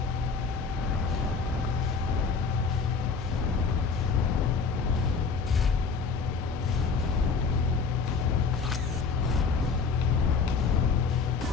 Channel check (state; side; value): quieter; right; 5.1 dB